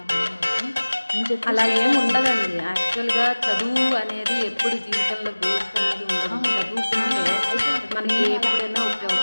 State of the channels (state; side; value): inverted; both; correlation -1.00